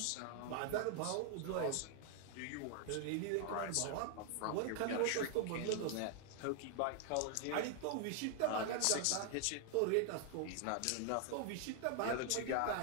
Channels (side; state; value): both; different; correlation 0.00